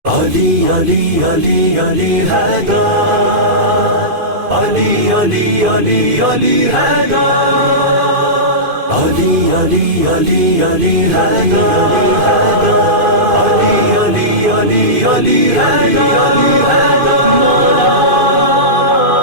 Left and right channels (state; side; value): late; left; 2.5 ms